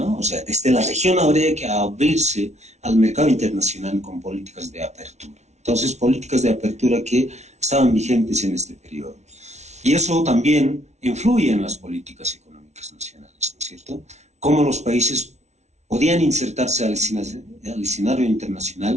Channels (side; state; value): left; late; 0.32 ms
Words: O sea, desde la región habría que abrirse al mercado internacional con políticas de apertura. Entonces, políticas de apertura que estaban vigentes en este periodo. Y eso también influye en las políticas económicas nacionales, ¿no es cierto? Cómo los países podían insertarse al escenario